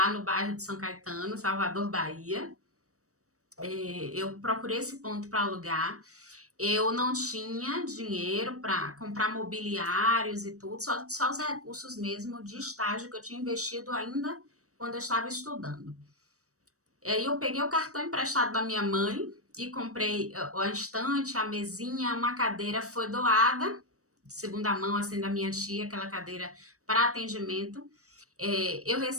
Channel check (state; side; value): late; left; 0.65 ms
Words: no bairro de São Caetano, Salvador, Bahia. Eu procurei esse ponto para alugar. Eu não tinha dinheiro para comprar mobiliários e tudo, só os recursos mesmo de estágio que eu tinha investido ainda quando eu estava estudando. Aí eu peguei o cartão emprestado da minha mãe e comprei a estante, a mesinha, uma cadeira foi doada, de segunda mão, assim, da minha tia, aquela cadeira para atendimento. Eu